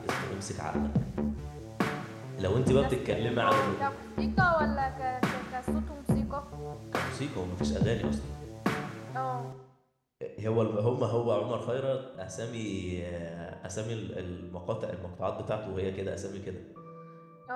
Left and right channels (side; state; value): both; identical; correlation 1.00